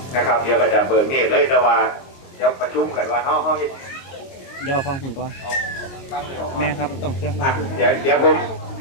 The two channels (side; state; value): right; late; 22 ms